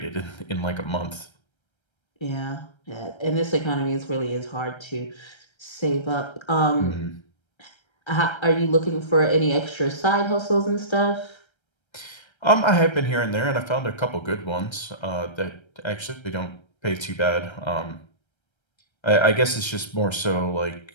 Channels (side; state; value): right; late; 1.3 ms